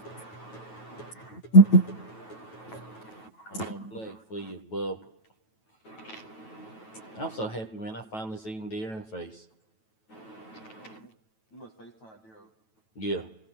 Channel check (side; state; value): right; late; 9.2 ms